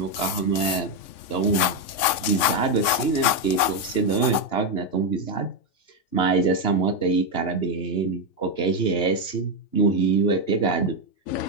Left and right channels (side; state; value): right; late; 3.6 ms